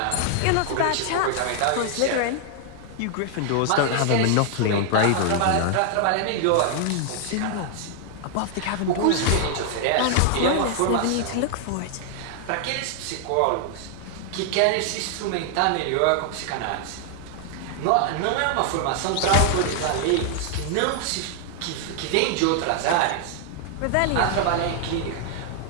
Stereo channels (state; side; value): different; both; correlation 0.00